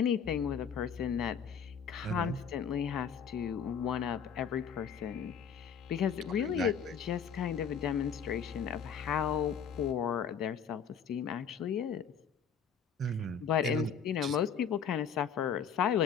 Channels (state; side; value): quieter; right; 7.0 dB